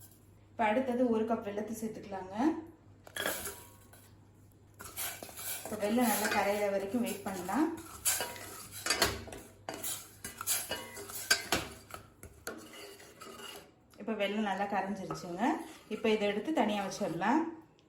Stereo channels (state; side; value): identical; both; correlation 1.00